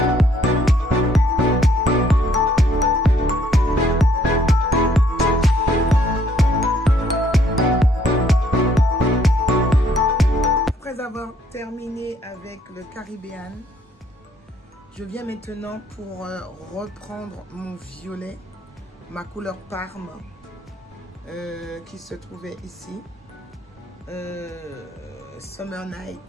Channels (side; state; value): both; normal; correlation 0.66